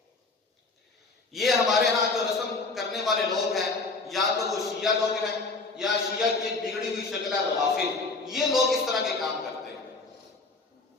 یہ ہمارے ہاں جو رسم کرنے والے لوگ ہیں، یا تو وہ شیعہ لوگ ہیں یا شیعہ کی ایک بگڑی ہوئی شکل ہے روافض، یہ لوگ اس طرح کے کام کرتے ہیں۔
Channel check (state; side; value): quieter; right; 3.7 dB